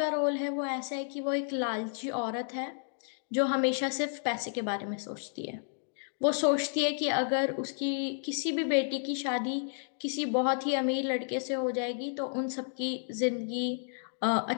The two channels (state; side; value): silent; right; digital silence